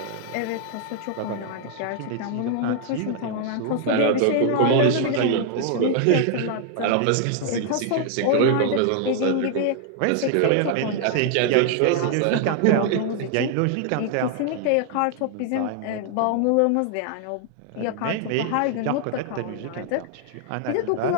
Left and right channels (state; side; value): different; both; correlation 0.00